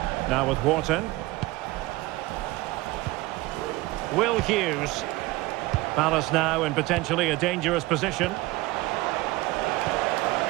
Now with Wharton. Will Hughes. Palace now in potentially a dangerous position.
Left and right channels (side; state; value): left; quieter; 20.0 dB